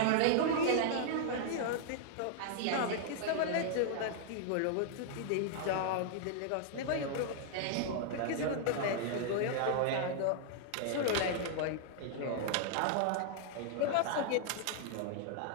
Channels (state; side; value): different; both; correlation -0.01